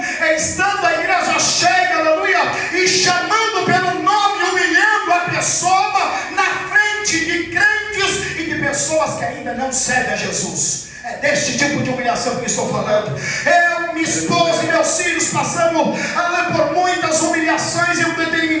é estando a igreja cheia, aleluia, e chamando pelo nome, humilhando a pessoa na frente de crentes e de pessoas que ainda não servem a Jesus. É deste tipo de humilhação que estou falando. Eu, minha esposa e meus filhos passamos por muitas humilhações em um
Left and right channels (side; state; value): both; identical; correlation 1.00